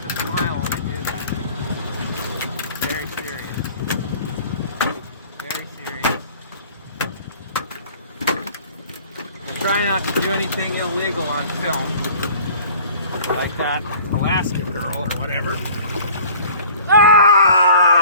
to smile when I do that. Very serious. Very serious. Try not to do anything illegal on film. Like that Alaska girl or whatever.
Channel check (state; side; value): inverted; both; correlation -0.48